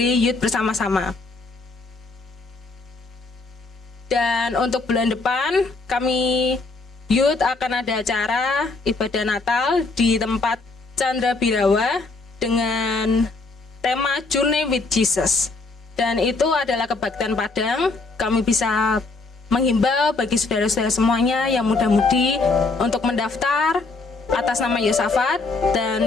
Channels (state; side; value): quieter; right; 3.6 dB